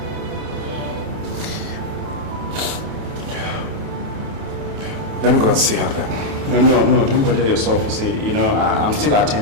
Let me go and see her then. No, don't bother yourself. You see, you know, I'm still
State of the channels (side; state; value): left; late; 29 ms